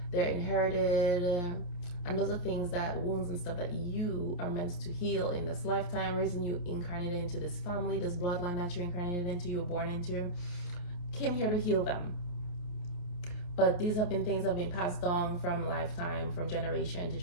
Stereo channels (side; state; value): right; late; 28 ms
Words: they're inherited. And those are things that, wounds and stuff that you are meant to heal in this lifetime. Reason you incarnated into this family, this bloodline that you incarnated into, you were born into, came here to heal them. But these have been things that have been passed down from lifetime, from generation to